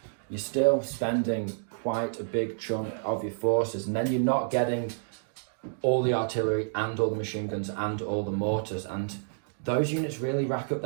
you're still spending quite a big chunk of your forces, and then you're not getting all the artillery and all the machine guns and all the mortars, and those units really rack up.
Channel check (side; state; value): left; silent; digital silence